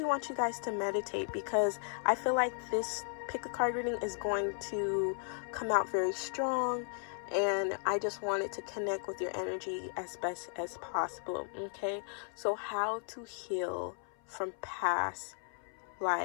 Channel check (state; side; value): silent; right; 54 dB below the other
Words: want you guys to meditate, because I feel like this pick a card reading is going to come out very strong, and I just wanted to connect with your energy as best as possible. Okay, so how to heal from past